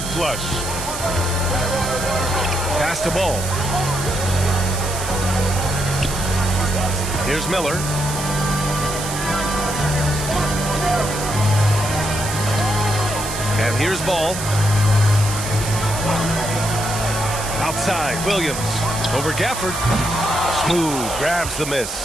flush. Pass to Ball. Here's Miller. And here's Ball. Outside, Williams. Over Gafford. Smooth grabs the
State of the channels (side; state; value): right; noise; hiss, 7 dB below the sound